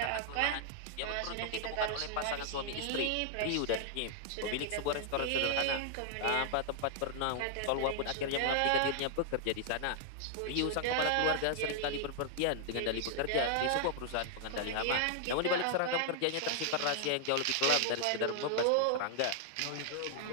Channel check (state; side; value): different; both; correlation -0.01